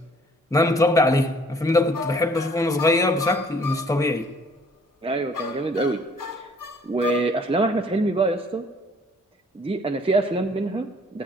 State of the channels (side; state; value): both; normal; correlation 0.58